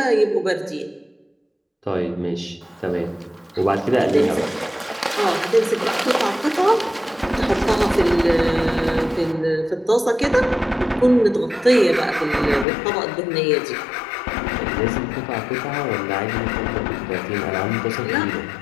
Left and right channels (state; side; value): drops out; right; at 12.7 s